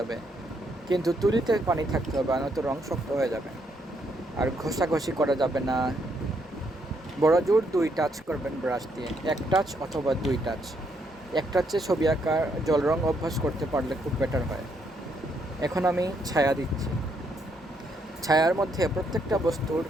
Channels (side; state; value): both; normal; correlation 0.74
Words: কিন্তু তুলিতে পানি থাকতে হবে, নয়তো রং শক্ত হয়ে যাবে। আর ঘষাঘষি করা যাবে না। বড় জোর 2 টাচ করবেন ব্রাশ দিয়ে, 1 টাচ অথবা 2 টাচ। 1 টাচে ছবি আঁকার জল রং অভ্যাস করতে পারলে খুব বেটার হয়। এখন আমি ছায়া দিচ্ছি। ছায়ার মধ্যে প্রত্যেকটা বস্তুর